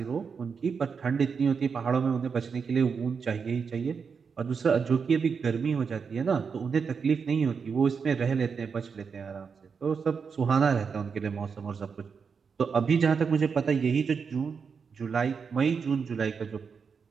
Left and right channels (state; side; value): quieter; left; 5.9 dB